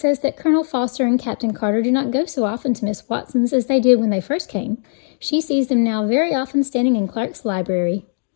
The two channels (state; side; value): silent; right; digital silence